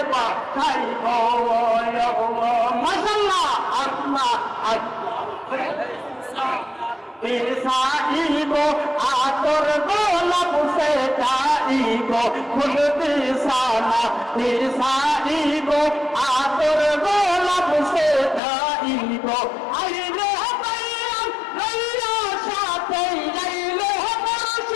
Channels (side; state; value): right; drops out; at 18.4 s